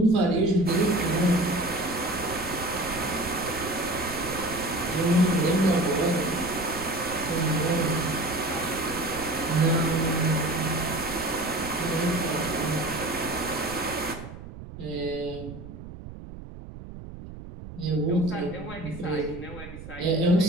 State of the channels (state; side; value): noise; right; rumble, 13 dB below the sound